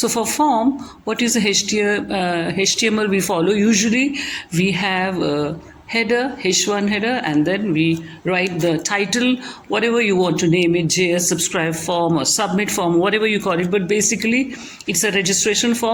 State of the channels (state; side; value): identical; both; correlation 1.00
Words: for form, what is the HTML we follow? Usually we have a header, H1 header, and then we write the title, whatever you want to name it, JS subscribe form or submit form, whatever you call it. But basically, it's a registration